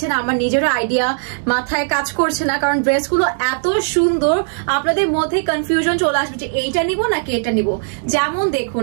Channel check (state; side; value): silent; left; digital silence